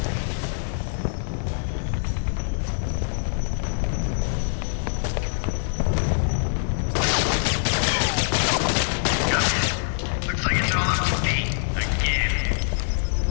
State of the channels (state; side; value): silent; right; digital silence